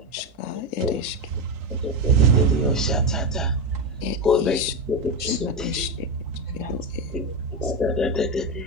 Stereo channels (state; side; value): normal; both; correlation 0.12